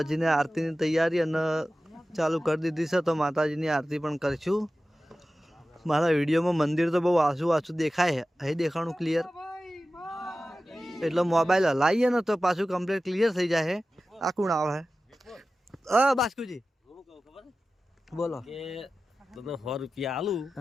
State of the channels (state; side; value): normal; both; correlation 0.95